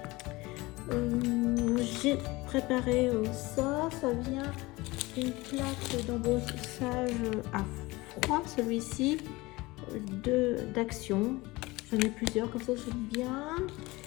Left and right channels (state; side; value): quieter; right; 21.6 dB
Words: J'ai préparé ça vient d'une plaque d'embossage à froid, celui-ci, d'Action. J'en ai plusieurs, comme ça j'aime bien.